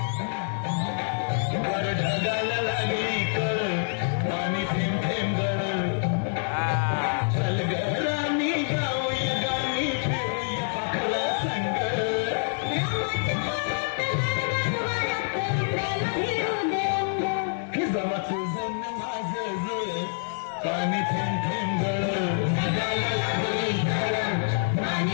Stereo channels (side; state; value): right; silent; digital silence